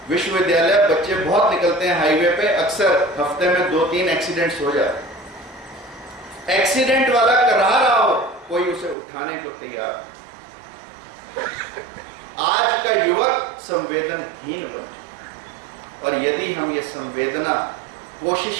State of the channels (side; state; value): left; drops out; at 9.0 s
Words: विश्वविद्यालय बच्चे बहुत निकलते हैं हाईवे पे, अक्सर हफ्ते में 2-3 एक्सीडेंट्स हो जाते हैं। एक्सीडेंट वाला करा रहा हो, कोई उसे उठाने को तैयार। आज का युवक संवेदनहीन बन चुका, और यदि हम ये संवेदना कोशिश